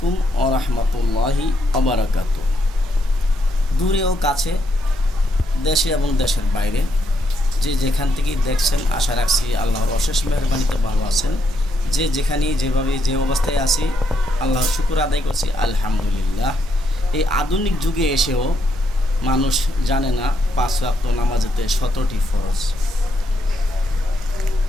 ওয়া রাহমাতুল্লাহি ওয়া বারাকাতুহু। দূরে ও কাছে, দেশে এবং দেশের বাইরে যে যেখান থেকেই দেখছেন, আশা রাখছি আল্লাহর অশেষ মেহেরবানিতে ভালো আছেন। যে যেখানেই যেভাবে যে অবস্থায় আছি, আল্লাহর শুকর আদায় করছি আলহামদুলিল্লাহ। এই আধুনিক যুগে এসেও মানুষ জানে না 5 ওয়াক্ত নামাজেতে 17টি ফরজ।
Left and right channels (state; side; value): normal; both; correlation 0.77